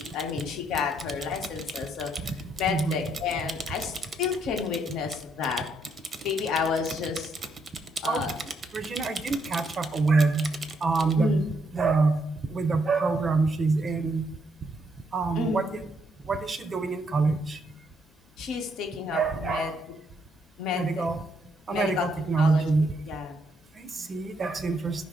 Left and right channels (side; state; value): both; normal; correlation 0.74